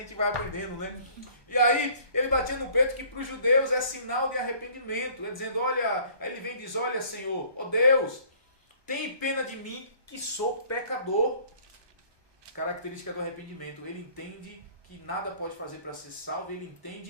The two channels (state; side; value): late; left; 1.2 ms